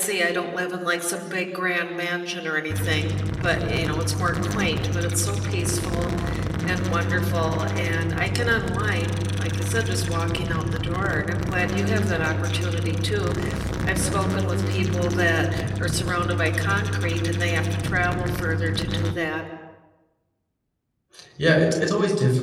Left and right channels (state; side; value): identical; both; correlation 1.00